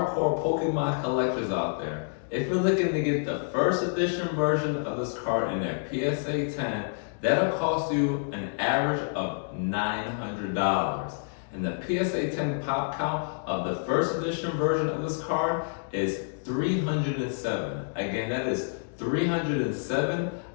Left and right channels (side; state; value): right; silent; digital silence